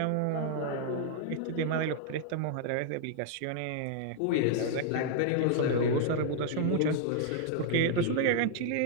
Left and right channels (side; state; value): both; different; correlation 0.00